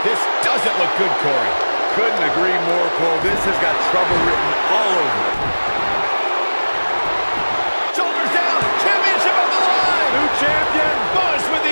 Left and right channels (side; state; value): both; inverted; correlation -1.00